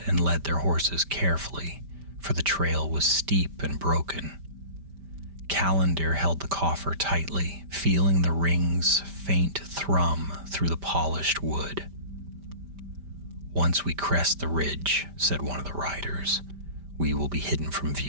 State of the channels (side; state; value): left; late; 5.1 ms